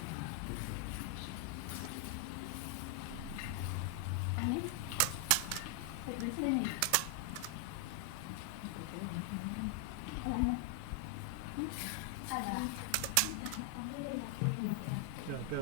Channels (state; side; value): different; both; correlation 0.00